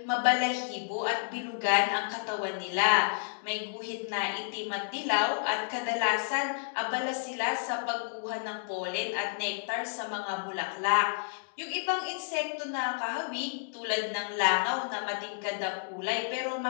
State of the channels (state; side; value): silent; right; digital silence